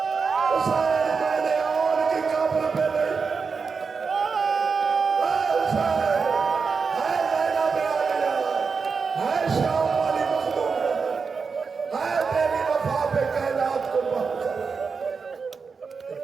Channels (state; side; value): quieter; left; 5.2 dB